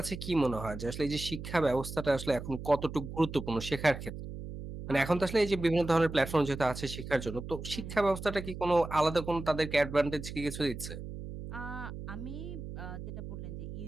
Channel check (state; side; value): noise; right; hum, 9 dB below the sound